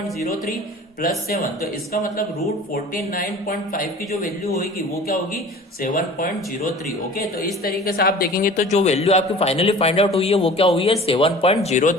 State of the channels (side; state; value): both; normal; correlation 0.42